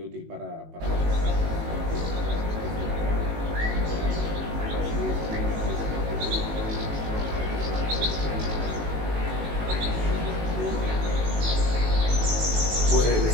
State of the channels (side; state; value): left; late; 19 ms